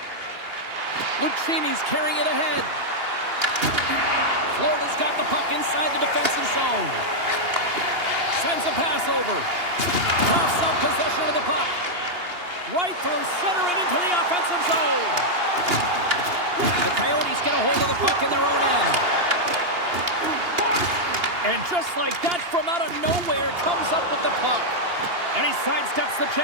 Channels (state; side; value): late; left; 2.8 ms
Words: Lucchini's carrying it ahead. Florida's got the puck inside the defensive zone. Sends a pass over. Coughs up possession of the puck. Right through center and into the offensive zone. The Coyotes get a hold of the puck in their own end. And just like that, from out of nowhere, comes up with the puck. And he sidesteps the